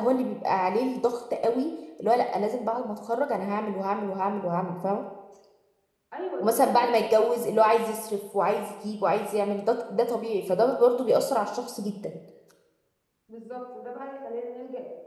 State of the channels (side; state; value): both; identical; correlation 1.00